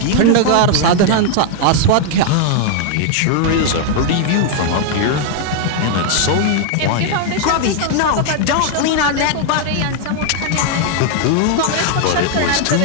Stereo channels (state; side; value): different; both; correlation 0.00